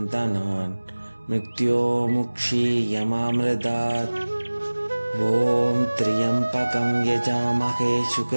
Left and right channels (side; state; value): both; inverted; correlation -1.00